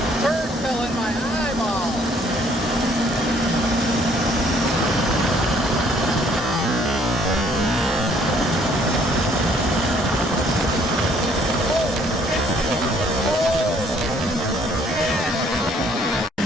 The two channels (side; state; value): both; normal; correlation 0.62